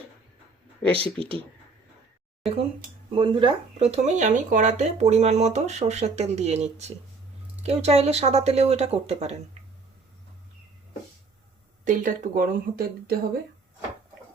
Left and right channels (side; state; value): left; quieter; 4.1 dB